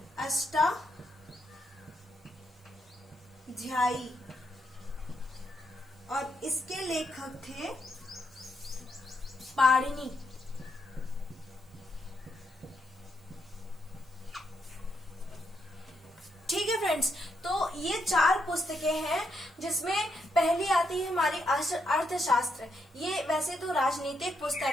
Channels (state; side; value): normal; both; correlation 0.79